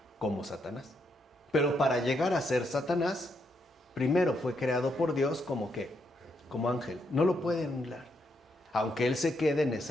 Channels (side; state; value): both; normal; correlation 0.78